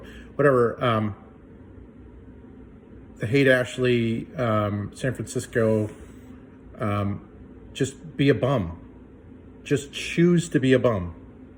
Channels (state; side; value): identical; both; correlation 1.00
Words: whatever. The Haight-Ashbury, San Francisco, just be a bum. Just choose to be a bum.